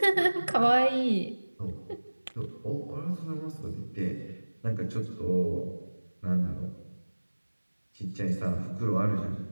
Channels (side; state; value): both; inverted; correlation -1.00